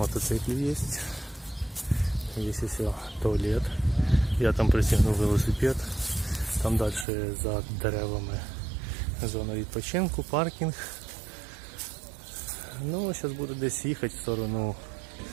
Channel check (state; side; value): drops out; left; at 7.1 s